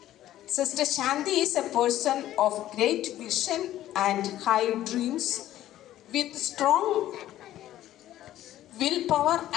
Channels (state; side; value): quieter; right; 13.4 dB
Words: Sister Shanti is a person of great vision and high dreams with strong willpower